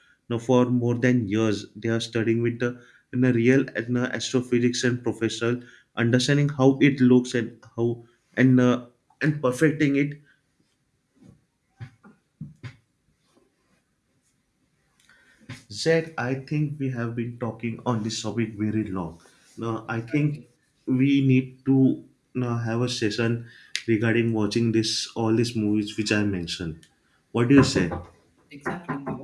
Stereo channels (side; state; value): both; identical; correlation 1.00